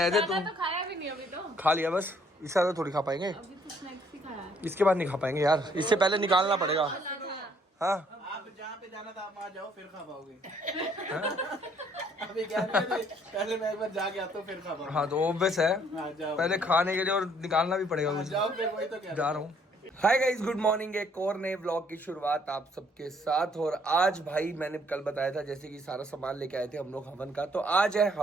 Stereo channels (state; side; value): normal; both; correlation 0.64